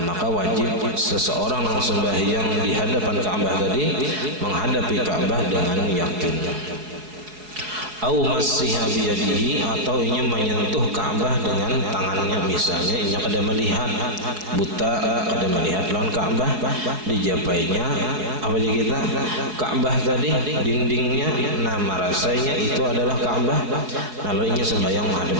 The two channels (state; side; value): late; left; 4.8 ms